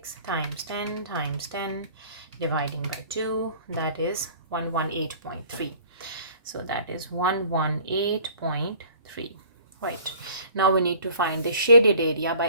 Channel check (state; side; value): inverted; both; correlation -0.50